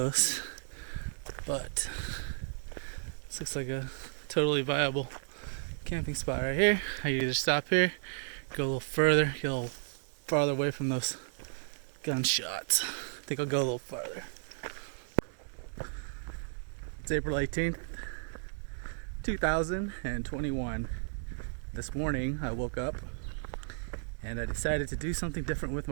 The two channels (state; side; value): silent; left; digital silence